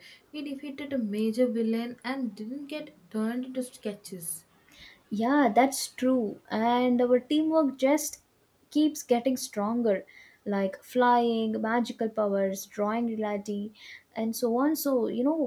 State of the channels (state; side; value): identical; both; correlation 1.00